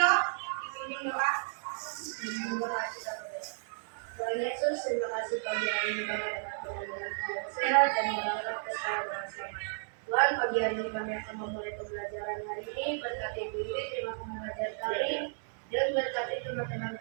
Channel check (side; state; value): left; silent; digital silence